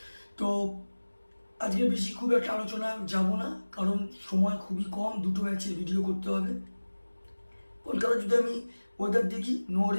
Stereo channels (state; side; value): inverted; both; correlation -1.00